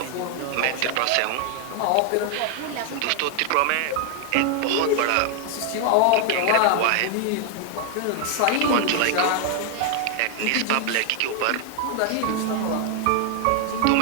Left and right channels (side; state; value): both; different; correlation 0.00